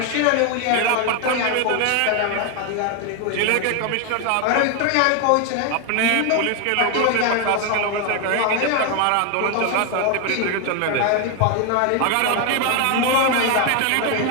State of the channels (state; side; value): different; both; correlation 0.01